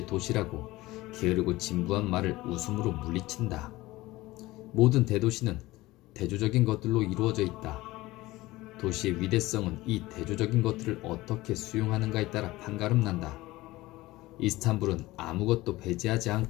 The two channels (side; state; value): right; quieter; 18.8 dB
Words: 도시라고 게으르고 진부한 말을 웃음으로 물리친다. 모든 대도시는 대조적인 것들로 이루어져 있다. 도시의 위대성은 이 대조적인 것들을 어떻게 수용하는가에 따라 판가름난다. 이스탄불은 아무것도 배제하지